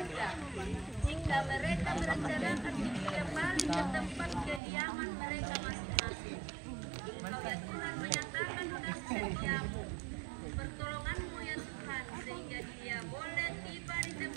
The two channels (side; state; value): left; drops out; at 4.6 s